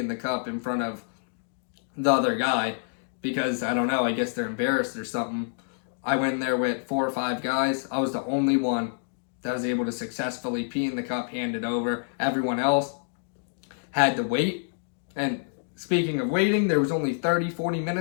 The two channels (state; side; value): silent; right; digital silence